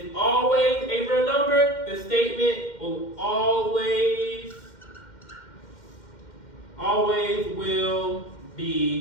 always a real number, the statement will always will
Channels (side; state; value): right; late; 2.1 ms